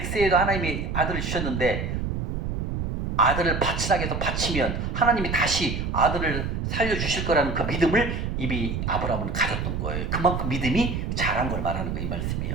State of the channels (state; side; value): noise; right; rumble, 2 dB below the sound